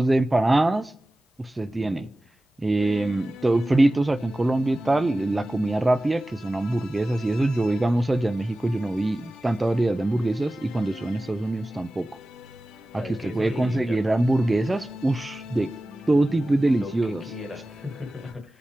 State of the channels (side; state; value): both; normal; correlation 0.96